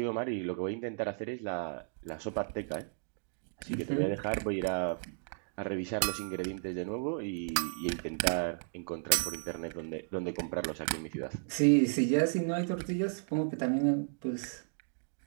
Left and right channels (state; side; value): silent; left; digital silence